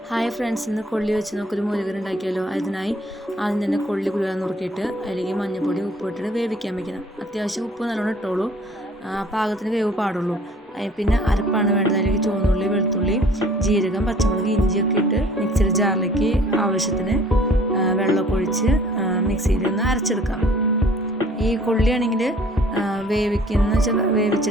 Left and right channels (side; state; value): both; normal; correlation 0.54